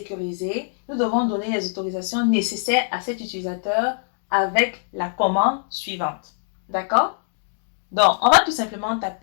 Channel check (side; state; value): right; silent; digital silence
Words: nous devons donner les autorisations nécessaires à cet utilisateur avec la commande suivante. D'accord? Donc, on va tout simplement